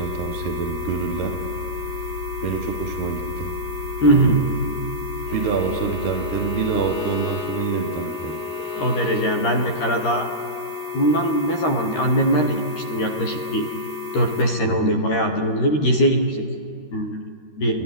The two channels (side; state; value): right; late; 13 ms